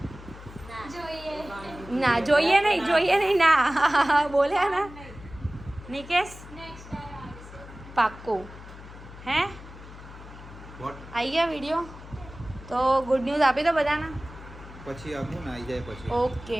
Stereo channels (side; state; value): left; noise; hum, 16 dB below the sound